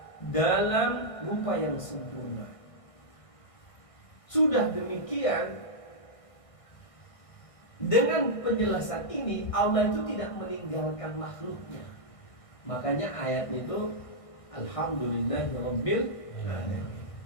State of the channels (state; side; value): late; right; 1.6 ms